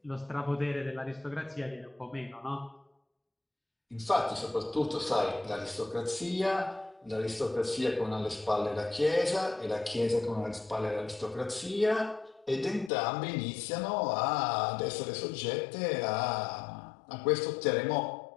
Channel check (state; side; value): drops out; right; at 12.9 s